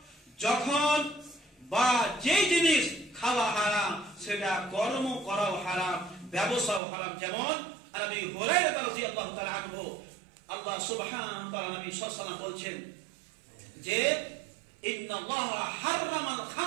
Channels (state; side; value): drops out; left; at 6.8 s